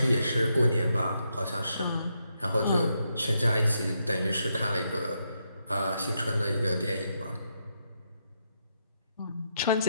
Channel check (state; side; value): inverted; both; correlation -0.81